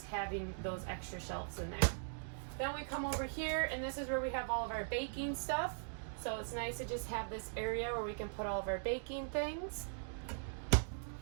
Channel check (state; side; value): silent; left; digital silence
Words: having those extra shelves in there. Then we come over here, and this is where we have all of our baking stuff. So it's nice to just have this area where we can put all of our baking things.